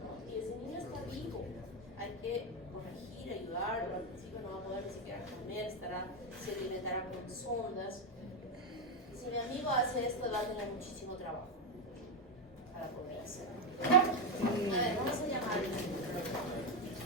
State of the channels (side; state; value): both; normal; correlation 0.07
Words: ¿no? Y ese niño está vivo, hay que corregir, ayudarlo. Al principio no va a poder ni siquiera comer, se alimentará con sondas. Si mi amigo hace esto, va a tener muchísimo trabajo para poder hacerlo. A ver, vamos a llamar.